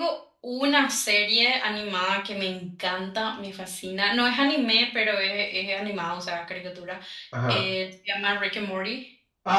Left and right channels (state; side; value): identical; both; correlation 1.00